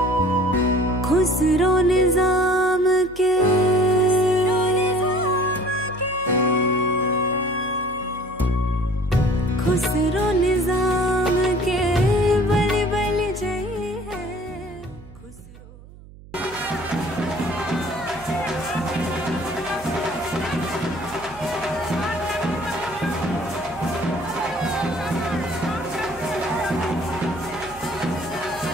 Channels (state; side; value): noise; right; hum, 20 dB below the sound